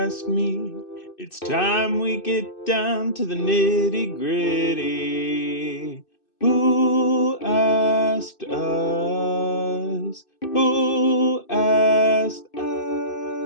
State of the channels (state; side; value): late; right; 2.6 ms